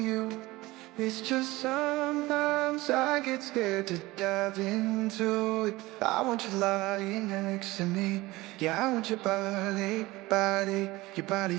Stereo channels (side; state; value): left; quieter; 19.8 dB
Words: It's just sometimes I get scared to dive into it. I want you lying next to me. Yeah, I want your your body